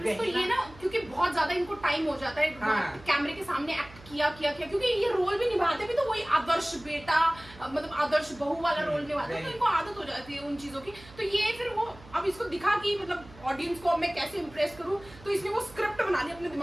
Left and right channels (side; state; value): right; noise; hum, 21 dB below the sound